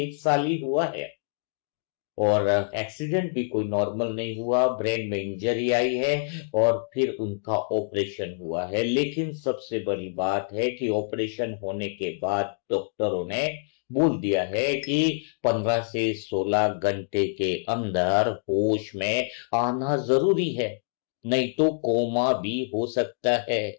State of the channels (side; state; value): right; silent; digital silence